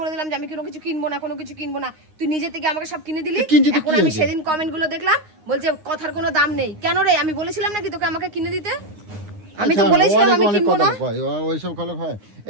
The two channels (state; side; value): late; left; 9.6 ms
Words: দিলাম যে আমি কোনো কিছু কিনবো না, কোনো কিছু কিনবো না। তুই নিজে থেকে আমাকে সব কিনে দিলি। এখন আমি সেদিন কমেন্ট গুলো দেখলাম, বলছে কথার কোনো দাম নেই। কেন রে, আমি বলেছিলাম নাকি তোকে আমাকে কিনে দিতে? আমি তো বলেছিলাম আমি কিনবো না। ওইসব ভালো হয়